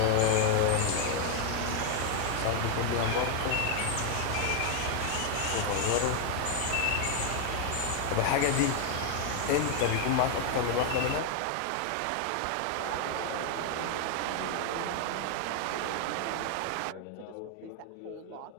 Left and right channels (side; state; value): both; different; correlation 0.00